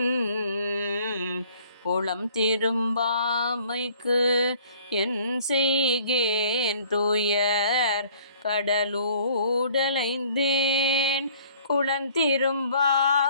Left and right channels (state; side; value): inverted; both; correlation -0.56